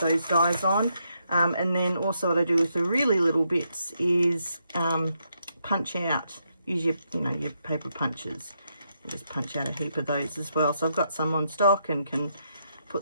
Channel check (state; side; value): inverted; both; correlation -0.79